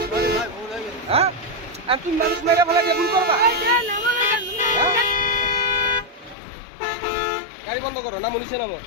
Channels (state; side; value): drops out; right; at 6.4 s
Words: হ্যাঁ আর তুমি মানুষ মাইরা ফেলাই দিয়ে ভুল করবা? গাড়ি বন্ধ করো, নামো নিচে নামো।